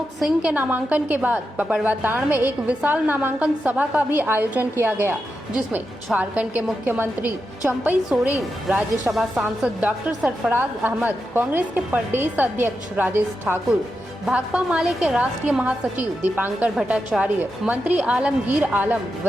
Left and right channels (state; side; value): normal; both; correlation 0.88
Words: सिंह के नामांकन के बाद पपड़वाताण में एक विशाल नामांकन सभा का भी आयोजन किया गया, जिसमें झारखंड के मुख्यमंत्री चंपई सोरेन, राज्यसभा सांसद डॉक्टर सरफराज अहमद, कांग्रेस के प्रदेश अध्यक्ष राजेश ठाकुर, भाकपा माले के राष्ट्रीय महासचिव दीपांकर भट्टाचार्य, मंत्री आलमगीर आलम,